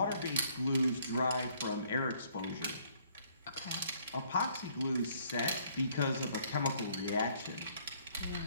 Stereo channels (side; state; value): both; inverted; correlation -0.63